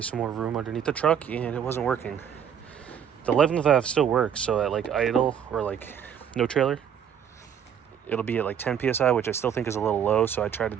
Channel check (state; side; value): quieter; left; 8.4 dB